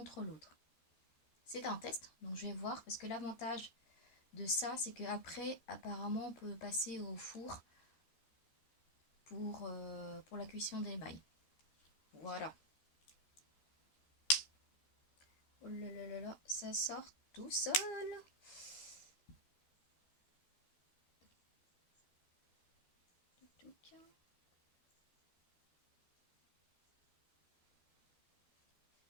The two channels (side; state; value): right; late; 13 ms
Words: l'autre. C'est un test, donc je vais voir parce que l'avantage de ça, c'est qu'après, apparemment, on peut passer au four pour la cuisson des mailles. Voilà. Oh là là là là, ça sort tout seul.